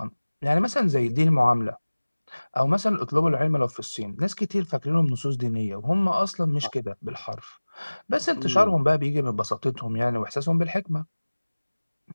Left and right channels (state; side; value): inverted; both; correlation -1.00